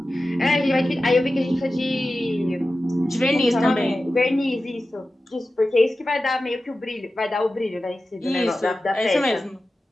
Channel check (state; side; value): normal; both; correlation 0.94